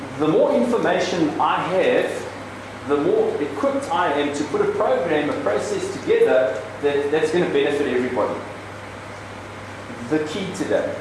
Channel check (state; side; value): identical; both; correlation 1.00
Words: the more information I have, the more equipped I am to put a program, a process together that's going to benefit everybody. The key today